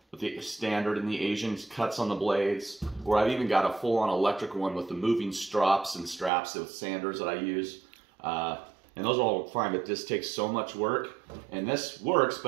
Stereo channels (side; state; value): left; drops out; at 6.3 s